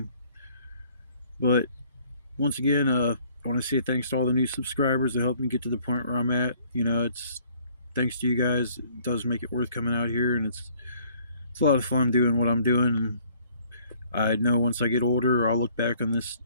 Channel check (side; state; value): both; inverted; correlation -0.59